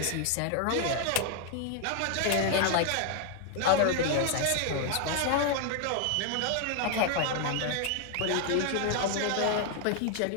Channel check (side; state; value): both; different; correlation 0.00